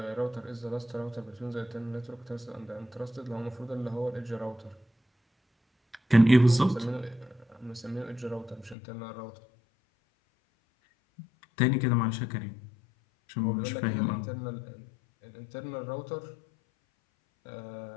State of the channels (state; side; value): drops out; right; at 8.8 s